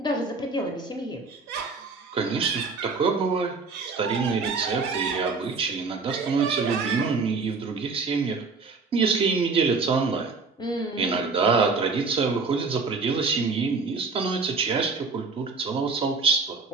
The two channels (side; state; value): left; quieter; 4.3 dB